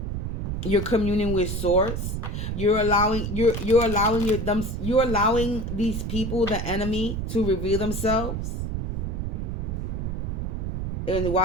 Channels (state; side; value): noise; right; rumble, 3 dB below the sound